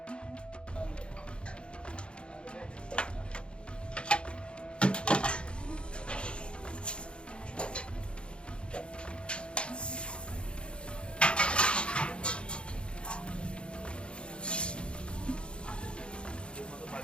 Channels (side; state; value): right; late; 0.056 ms